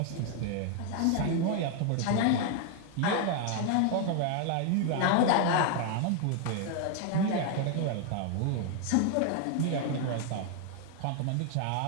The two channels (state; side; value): different; both; correlation 0.00